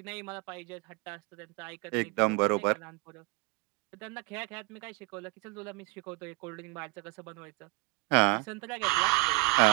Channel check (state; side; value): quieter; left; 24.7 dB